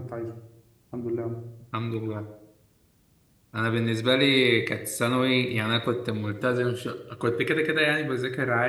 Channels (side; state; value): both; identical; correlation 1.00